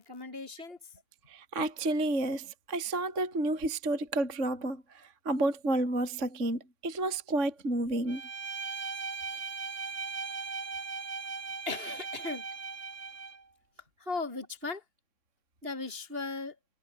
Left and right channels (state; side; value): late; left; 3.5 ms